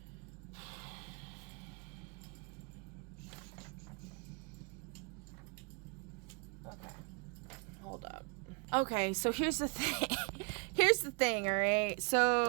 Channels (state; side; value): quieter; left; 34.6 dB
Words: Okay. Hold up. Okay, so here's the thing. Here's the thing, alright?